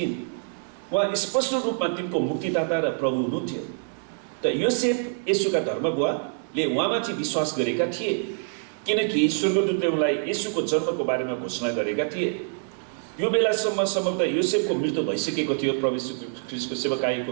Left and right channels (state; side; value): silent; left; 61 dB below the other